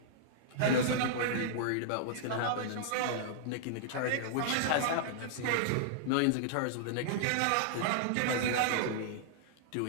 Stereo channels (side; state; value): both; different; correlation -0.02